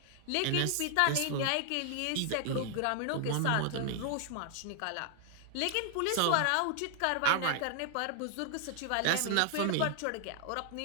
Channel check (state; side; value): different; both; correlation 0.00